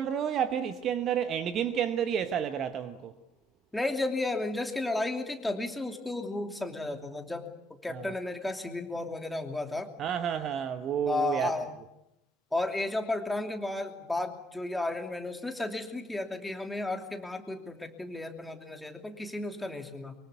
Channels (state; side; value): normal; both; correlation 0.71